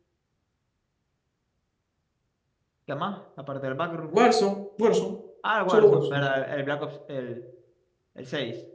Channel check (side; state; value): both; identical; correlation 1.00